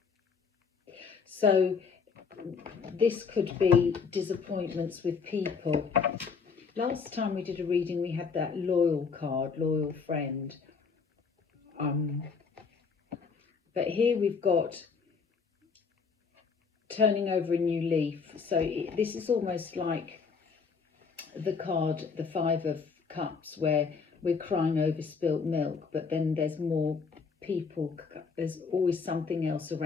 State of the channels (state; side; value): quieter; right; 5.4 dB